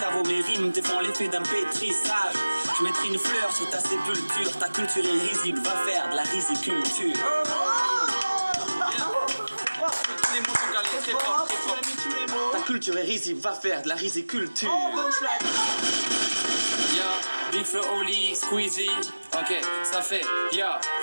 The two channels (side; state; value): both; inverted; correlation -1.00